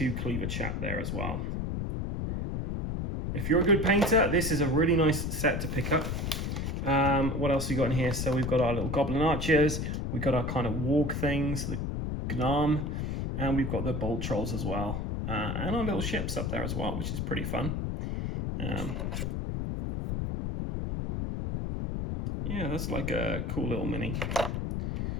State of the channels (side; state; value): left; noise; rumble, 2 dB below the sound